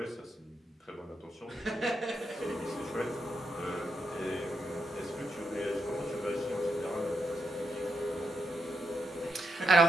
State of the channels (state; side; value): normal; both; correlation 0.82